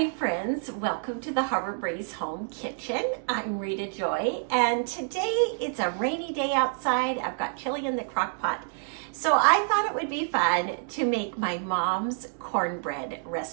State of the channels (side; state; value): left; silent; 58 dB below the other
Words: friends, welcome to the Harbor Breeze Home Kitchen. I'm Rita Joy, and today it's a rainy day outside. I've got chili in the crock pot. So I thought it would be fun to make my mom's cornbread